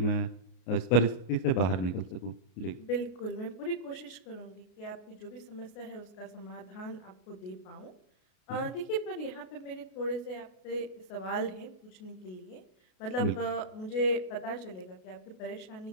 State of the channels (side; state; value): right; late; 33 ms